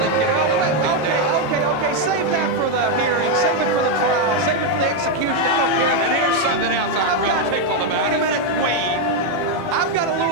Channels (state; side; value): late; left; 18 ms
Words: get it over that thing down. Okay. Save that for the hearing. Save it for the trial. Save it for the execution. I don't care. And here's something else I'm real tickled about. Wait a minute. Queen. I've got a